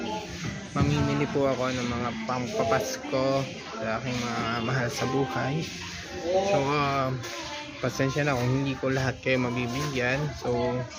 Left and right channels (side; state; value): both; identical; correlation 1.00